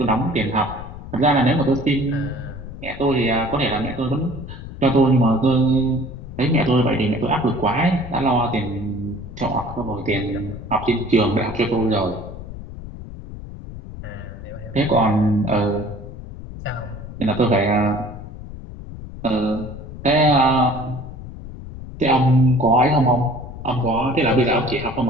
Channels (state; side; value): noise; left; rumble, 12 dB below the sound